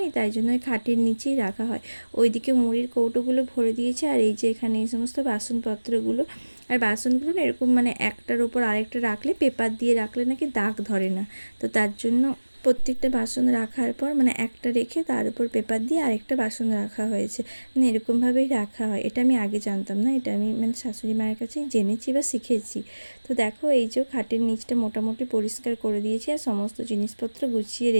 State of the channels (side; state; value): both; inverted; correlation -1.00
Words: নেই, তাই জন্য ওই খাটের নিচেই রাখা হয়। ওইদিকে মুড়ির কৌটোগুলো ভরে দিয়েছে। আর এই যে এখানে এই সমস্ত বাসনপত্রগুলো, আর বাসনগুলো না এরকম মানে একটার ওপর আরেকটা রাখলে, পেপার দিয়ে রাখলে নাকি দাগ ধরে না। তো তার জন্য প্রত্যেকটা বাসন রাখার পর মানে একটা রেখে তার উপর পেপার দিয়ে আরেকটা বাসন রাখা হয়েছে, মানে এরকমভাবেই রাখা হয়। এটা আমি আগে জানতাম না, এটা আমি মানে শাশুড়ি মায়ের কাছেই জেনেছি বা শিখেছি। তো দেখো, এই যে খাটের নিচটা মোটামুটি পরিষ্কার করে দিয়েছি, আর সমস্ত জিনিসপত্র গুছিয়ে